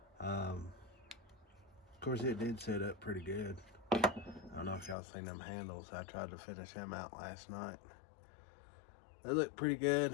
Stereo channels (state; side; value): drops out; right; at 5.0 s